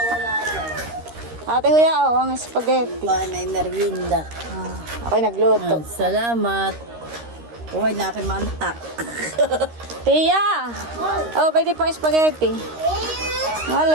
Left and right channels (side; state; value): left; late; 13 ms